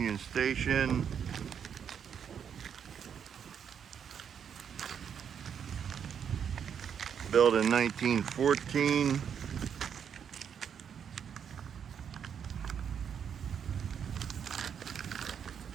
Station. Built in 1914.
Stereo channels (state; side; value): quieter; left; 7.8 dB